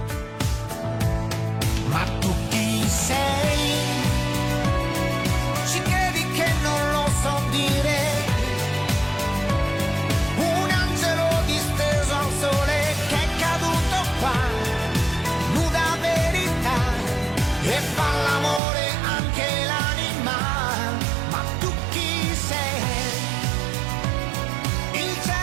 Ma tu chi sei? Ci credi che non lo so dire? Un angelo disteso al sole che è caduto qua, nuda verità, e fa l'amore anche l'anima. Ma tu chi sei? Il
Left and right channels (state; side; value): drops out; left; at 18.6 s